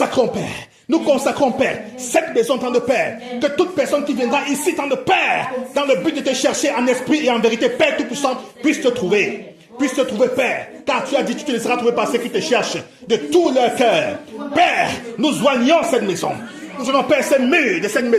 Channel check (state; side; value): identical; both; correlation 1.00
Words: Père, cette maison, temps de Père, que toute personne qui viendra ici, temps de Père, dans le but de te chercher en esprit et en vérité, Père Tout-Puissant, puisse te trouver, Père, car tu as dit, tu te laisseras trouver par ceux qui te cherchent de tout leur cœur. Père, nous joignons cette maison. Nous allons, Père, ces murs de cette